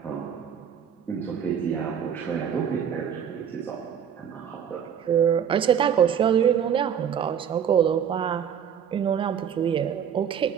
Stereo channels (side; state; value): left; quieter; 8.3 dB